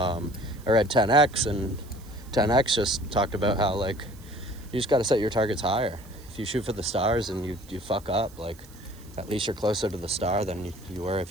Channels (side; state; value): right; noise; hiss, 24 dB below the sound